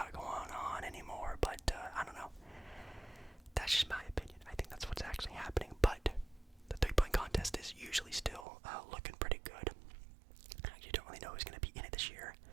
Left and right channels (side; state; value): left; drops out; at 8.5 s